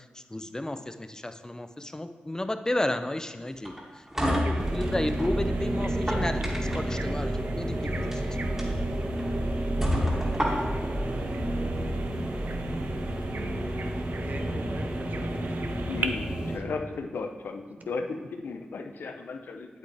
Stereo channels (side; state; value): both; normal; correlation 0.91